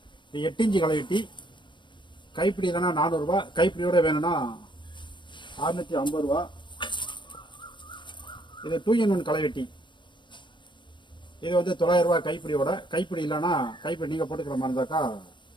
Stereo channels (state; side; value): late; right; 0.23 ms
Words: இது 8 இன்ச்சு களைவெட்டி, கைப்பிடி இல்லைன்னா 400 ரூபா, கைப்பிடியோட வேணும்னா 650 ரூபா. இது 2-in-1 களைவெட்டி. இது வந்து 900 ரூபா கைப்பிடியோட. கைப்பிடி இல்லைன்னா கைப்பிடி நீங்கள் போட்டுக்கிற மாதிரி இருந்தாக்கா